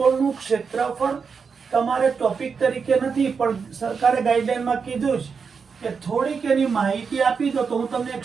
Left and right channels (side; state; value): left; quieter; 5.7 dB